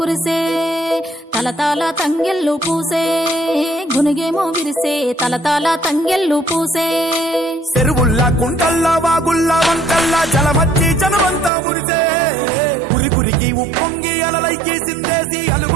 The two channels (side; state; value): left; drops out; at 11.5 s